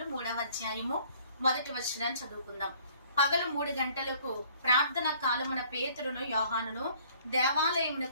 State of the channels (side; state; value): both; inverted; correlation -0.57